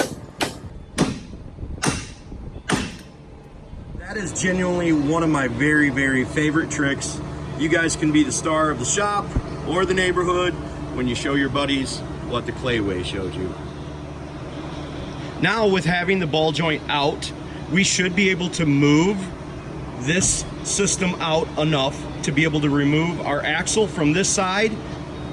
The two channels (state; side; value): identical; both; correlation 1.00